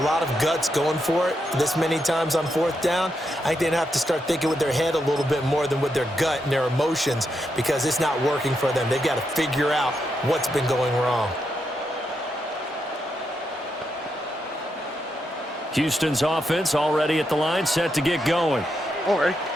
lot of guts going for it this many times on 4th down. I think they'd have to start thinking with their head a little bit more than with their gut and their emotions because it's not working for them. They've got to figure out what's been going wrong. Houston's offense already at the line, set to get going. All right.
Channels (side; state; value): both; normal; correlation 0.82